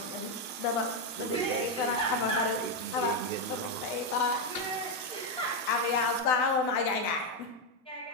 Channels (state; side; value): normal; both; correlation 0.04